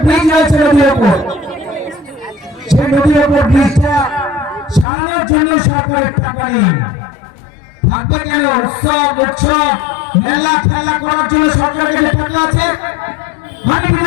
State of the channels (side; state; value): right; drops out; at 4.9 s